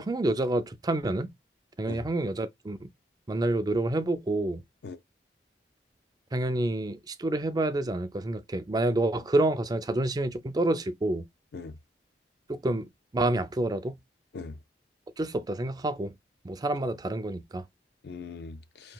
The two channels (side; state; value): both; normal; correlation 0.74